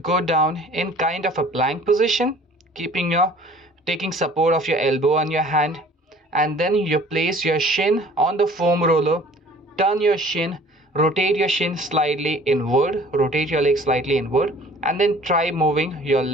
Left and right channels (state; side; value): normal; both; correlation 0.50